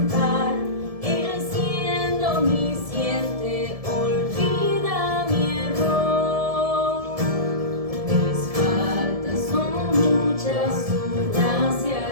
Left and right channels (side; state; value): left; late; 1.7 ms